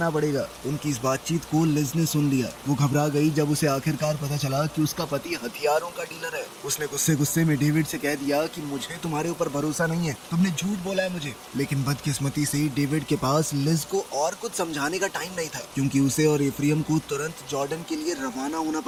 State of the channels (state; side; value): identical; both; correlation 1.00